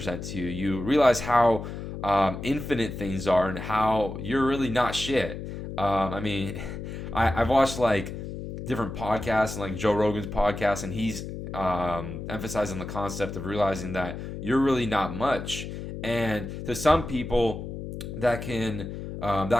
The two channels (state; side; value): noise; left; hum, 8 dB below the sound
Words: to you, you realize how infinite things are, and how you're really not shit. I mean, I've watched like different podcasts, and like Joe Rogan's podcast, and he's emphasizing the concept of realizing that you're really not much. And to some people, that